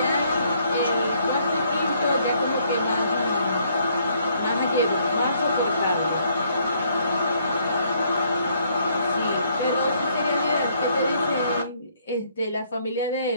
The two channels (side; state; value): both; inverted; correlation -0.67